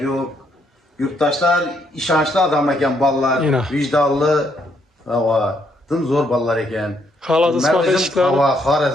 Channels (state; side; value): normal; both; correlation 0.73